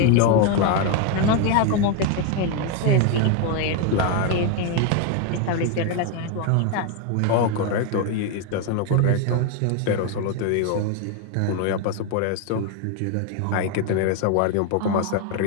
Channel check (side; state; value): both; different; correlation 0.01